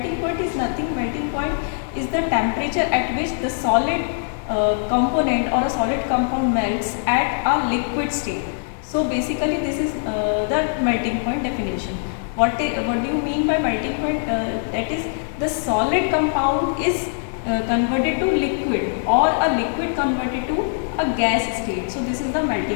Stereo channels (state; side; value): silent; right; digital silence